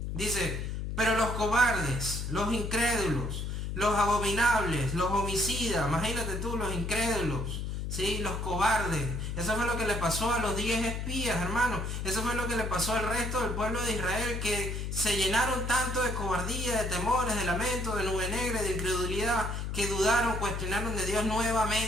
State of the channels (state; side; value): noise; left; hum, 3 dB below the sound